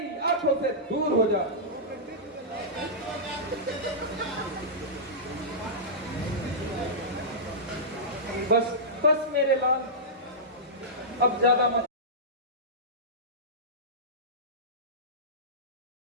आंखों से दूर हो जा। बस बस मेरे लाल, अब ज्यादा मत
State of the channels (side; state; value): both; normal; correlation -0.16